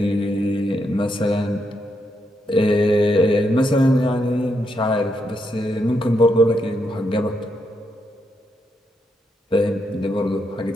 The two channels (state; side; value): normal; both; correlation 0.80